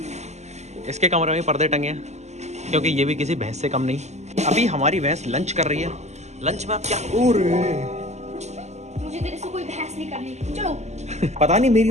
इसके कमरे में पर्दे टंगे हैं, क्योंकि ये भी किसी भैंस से कम नहीं। अभी हमारी भैंस लंच कर रही है। लंच में आप क्या? मुझे तेरे से कोई बहस नहीं करनी, चलो। पता नहीं मेरी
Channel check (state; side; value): late; left; 0.33 ms